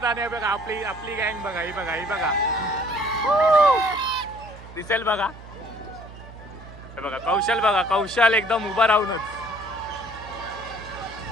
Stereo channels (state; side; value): noise; right; hum, 16 dB below the sound